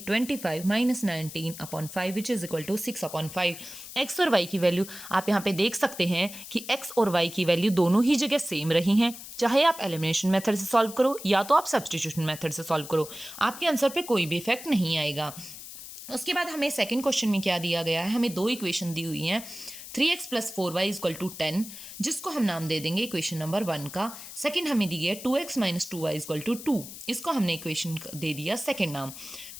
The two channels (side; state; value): left; noise; hiss, 13 dB below the sound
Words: 25 - 19/5 which is equal to 6/5। x और y की वैल्यू आप यहाँ पे देख सकते हैं कि x और y की वैल्यू दोनों ही जगह सेम रही हैं। चाहे आप एलिमिनेशन मेथड से सॉल्व करो या तो आप सब्स्टिट्यूशन मेथड से सॉल्व करो, आपके आंसर पे कोई भी इफेक्ट नहीं आएगा। उसके बाद हमें सेकंड क्वेश्चन में क्या दिया गया है, हमें दो इक्वेशन दी हुई हैं, 3x + 4y = 10, जिसको हम नाम दे देंगे इक्वेशन नंबर 1 का। सेकंड हमें दी है 2x - 2y = 2, इसको हमने इक्वेशन दे दिया सेकंड नाम।